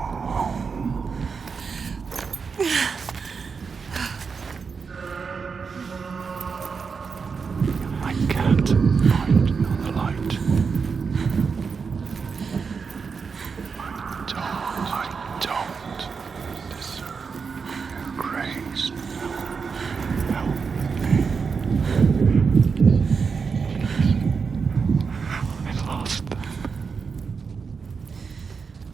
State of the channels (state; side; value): quieter; left; 5.4 dB